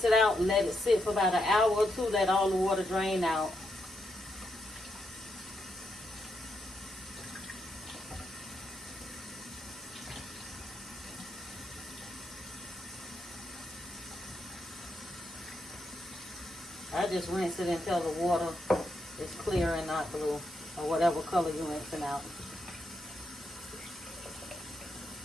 it out, let it sit for about an hour or two, let all the water drain out. I just rinse it until the water is clear and not blue, or whatever color you're rinsing out.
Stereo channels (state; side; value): normal; both; correlation 0.82